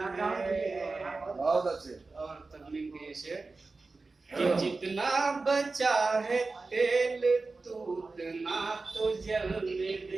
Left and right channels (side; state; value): left; quieter; 3.7 dB